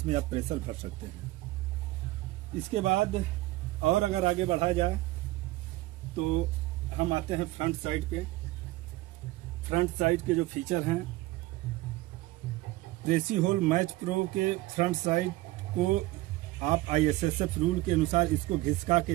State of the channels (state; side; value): quieter; left; 18.5 dB